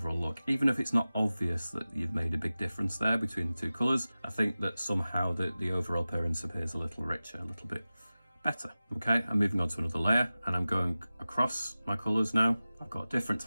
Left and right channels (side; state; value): both; inverted; correlation -0.96